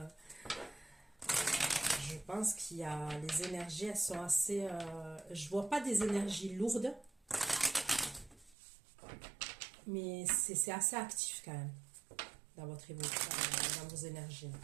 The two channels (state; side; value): drops out; left; at 8.6 s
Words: je pense qu'il y a, les énergies, elles sont assez, je vois pas des énergies lourdes, mais c'est assez actif quand même, dans votre évolution, dans vos énergies.